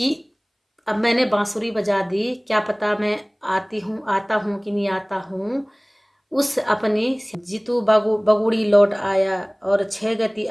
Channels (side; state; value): both; identical; correlation 1.00